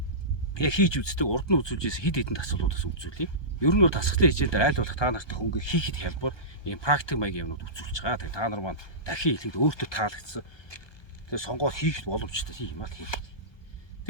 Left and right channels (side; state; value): right; late; 1.2 ms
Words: яг хийж үздэг урд нь үзүүлжээс хэд хэдэн тасгалуудаас үзүүлье. Ер нь бол тасгалын хичээлээр айл болох та нартай хөнгө хийхэд хялбар ийм практик маягийн юмнууд үзүүлж байгаа. Тэгээ та нар маань дахин хэлэхэд өөртөө таалагдсан. Тэгээ сонгоод хийхэд боломжтой юм аа хийх.